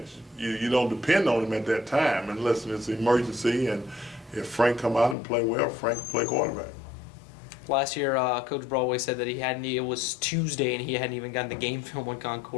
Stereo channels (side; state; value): right; drops out; at 5.2 s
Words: you don't depend on him at that time unless it's an emergency. And if Frank come out and play well, Frank can play quarterback. Last year, Coach Broadway said that it was Tuesday and he hadn't even gotten the game film on